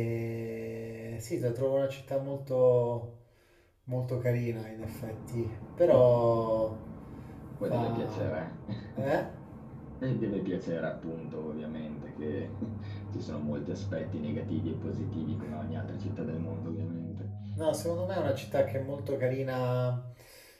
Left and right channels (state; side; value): identical; both; correlation 1.00